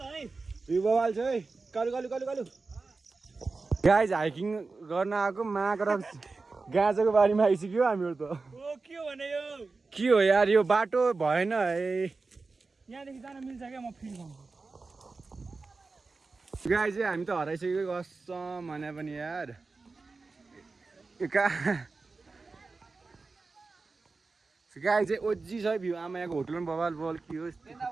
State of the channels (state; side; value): quieter; left; 3.9 dB